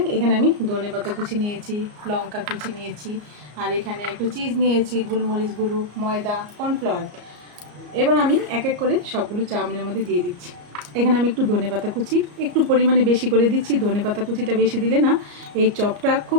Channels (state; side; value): late; left; 34 ms